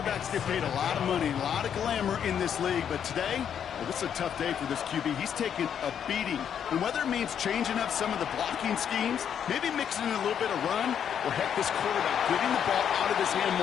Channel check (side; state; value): right; quieter; 8.5 dB